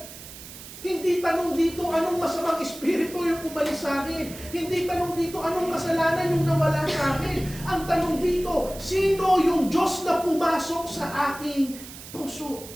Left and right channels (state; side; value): noise; right; hiss, 15 dB below the sound